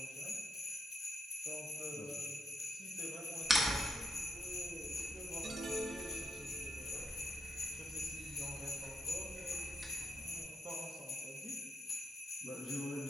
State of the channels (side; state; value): both; normal; correlation 0.83